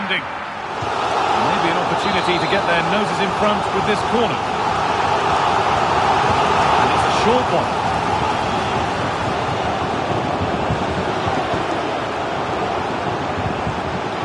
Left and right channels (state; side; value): identical; both; correlation 1.00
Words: Maybe an opportunity to get their noses in front with this corner. And it's a short one.